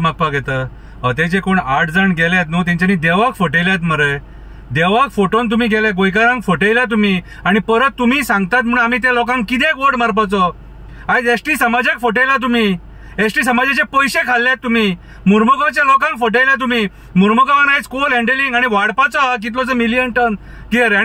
येता? ते जे कोण 8 जण गेल्यात न्हू, तेंच्यांनी देवाक फटयल्यात मरे. देवाक फटोवन तुम्ही गेले, गोंयकारांक फटयल्या तुम्ही, आणि परत तुम्ही सांगतात म्हणून आम्ही त्या लोकांक कित्याक वोट मारपाचो? आयज एसटी समाजाक फटयला तुम्ही, एसटी समाजाचे पैसे खाल्ल्यात तुम्ही, मुर्मुगांवच्या लोकांक फटयल्या तुम्ही. मुर्मुगांवान आयज कोल हँडलिंग आणि वाडपाचो हा कितलोसो मिलियन टन कितें रे,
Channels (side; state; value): both; identical; correlation 1.00